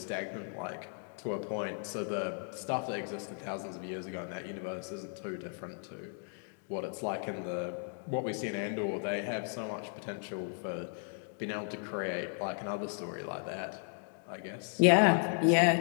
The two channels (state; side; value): silent; right; 54 dB below the other